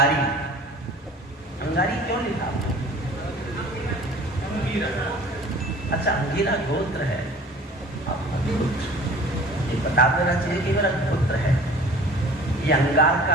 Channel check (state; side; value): normal; both; correlation 0.46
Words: अंगारी क्यों लिखा? अच्छा अंगीरा गोत्र है, ये बता देना चाहिए कि मेरा गोत्र है, ये अंगार